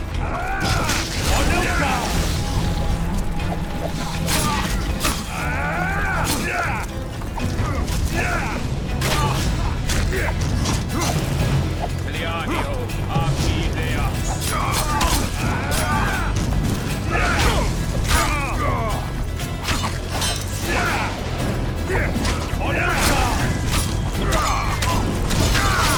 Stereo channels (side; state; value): both; identical; correlation 1.00